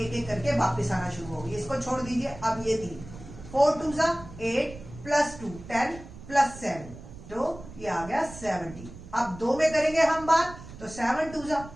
एक करके वापस आना शुरू होगी, इसको छोड़ दीजिए। अब ये 3 4 2 जा 8 प्लस 2 10 प्लस 7, तो ये आ गया 70। अब 2 में करेंगे हम बात, तो 7 2 जा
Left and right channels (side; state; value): right; noise; rumble, 15 dB below the sound